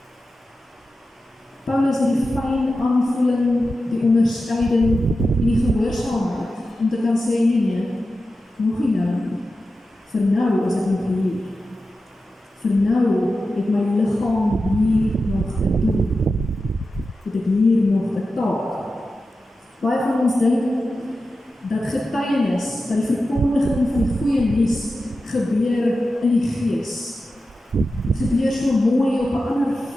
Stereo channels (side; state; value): both; normal; correlation 0.92